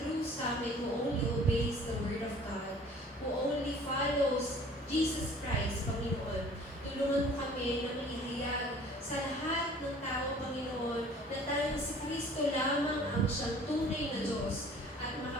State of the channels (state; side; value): normal; both; correlation 0.50